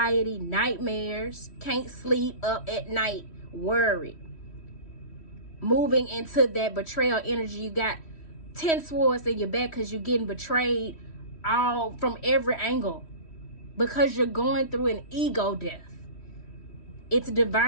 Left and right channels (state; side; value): late; right; 3.1 ms